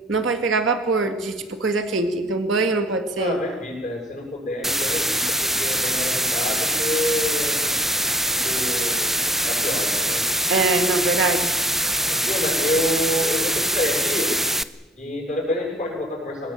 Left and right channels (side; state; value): both; normal; correlation 0.49